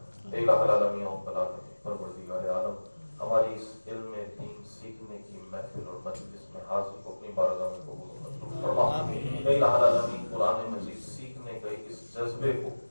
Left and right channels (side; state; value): both; inverted; correlation -1.00